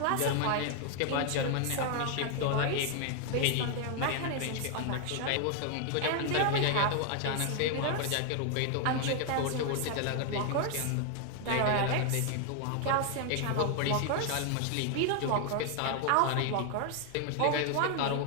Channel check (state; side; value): different; both; correlation 0.00